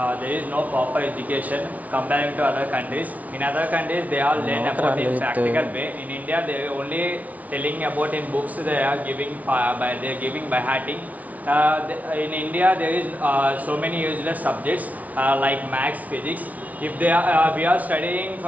no proper education comparing to other countries. In other countries, they are learn about in practical way. In India, they are only telling about in books. They are giving by hearting. In India, there is so many useless subjects like maths, physics. If we are studying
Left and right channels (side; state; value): left; late; 0.072 ms